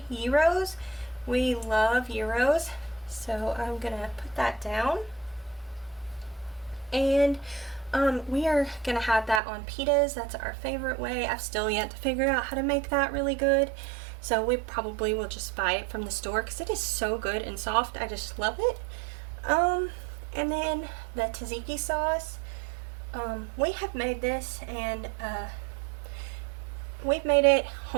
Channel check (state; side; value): drops out; left; at 9.4 s